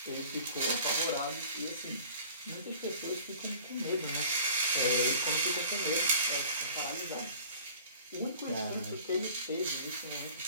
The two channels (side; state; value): both; inverted; correlation -0.46